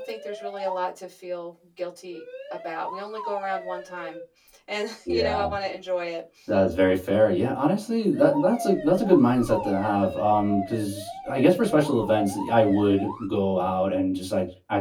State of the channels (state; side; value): identical; both; correlation 1.00